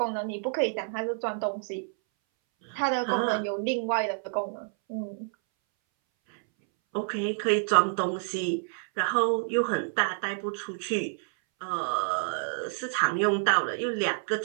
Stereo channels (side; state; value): left; silent; 59 dB below the other